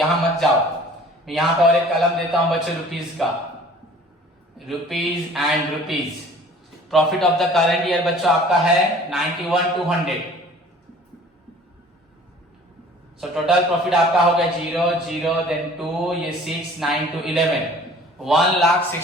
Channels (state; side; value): normal; both; correlation 0.49